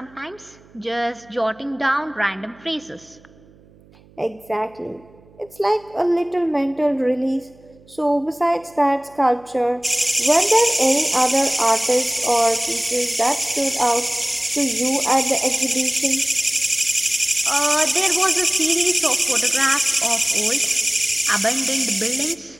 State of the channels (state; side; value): noise; right; hum, 27 dB below the sound